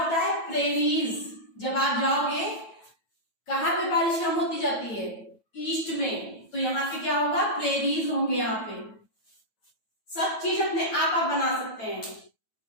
है, प्रेरीज। जब आप जाओगे, कहाँ पे बारिश कम होती जाती है, ईस्ट में, तो यहाँ पे क्या होगा, प्रेरीज होंगे। यहाँ पे सब चीज अपने आप बना सकते हैं।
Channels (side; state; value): right; late; 9.1 ms